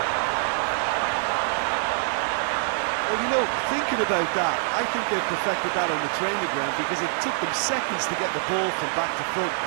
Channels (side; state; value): left; silent; digital silence